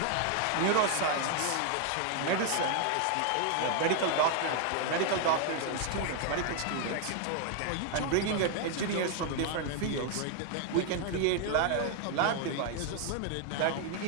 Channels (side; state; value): both; different; correlation 0.00